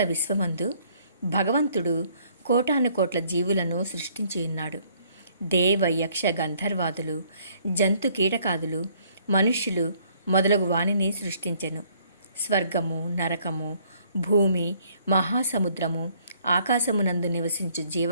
విశ్వమందు భగవంతుడు కోటాను కోట్ల జీవులను సృష్టించి ఉన్నాడు. దేవ యక్ష గంధర్వాదులు, జంతు కీటకాదులు, మనుష్యులు మొదలగు వాణిని సృష్టించెను. స్వర్గము, నరకము, భూమి, మహాసముద్రము, ఆకాశమునందు నివసించు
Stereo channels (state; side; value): inverted; both; correlation -0.63